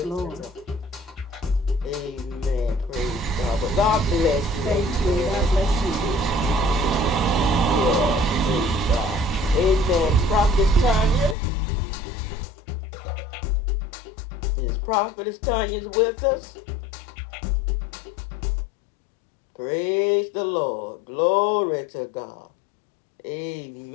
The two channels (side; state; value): right; drops out; at 11.4 s